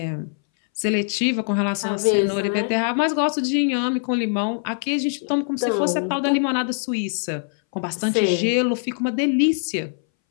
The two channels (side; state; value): right; silent; 62 dB below the other